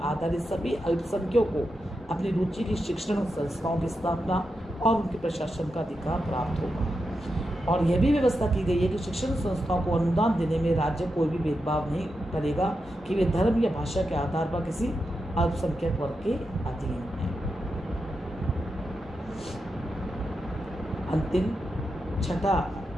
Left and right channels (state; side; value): normal; both; correlation 0.87